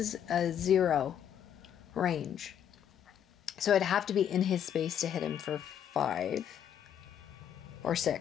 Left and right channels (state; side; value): quieter; right; 9.4 dB